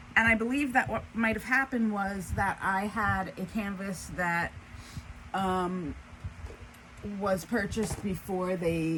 And I believe that what might have happened was that I had a canvas that was purchased before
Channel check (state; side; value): identical; both; correlation 1.00